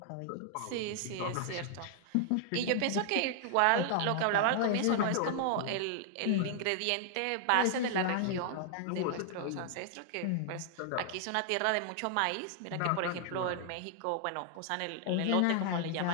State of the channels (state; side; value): different; both; correlation 0.00